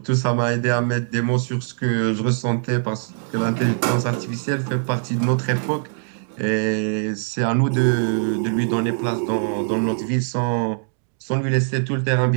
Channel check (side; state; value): left; silent; digital silence